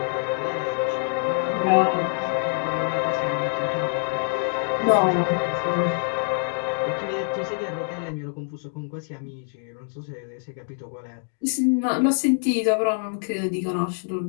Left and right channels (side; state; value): right; silent; digital silence